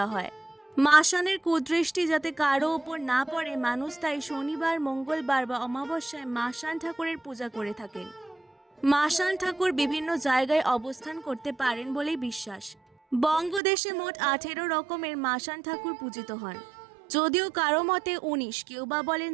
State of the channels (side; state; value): left; drops out; at 13.6 s